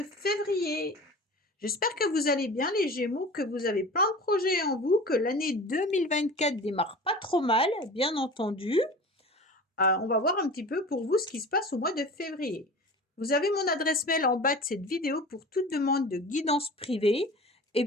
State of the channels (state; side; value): normal; both; correlation 0.37